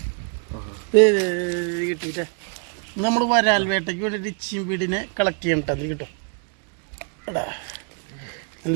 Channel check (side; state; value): left; quieter; 39.9 dB